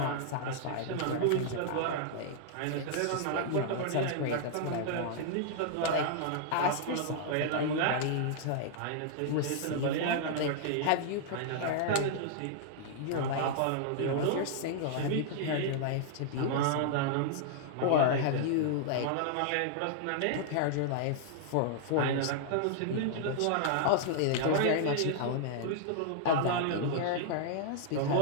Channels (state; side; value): different; both; correlation -0.01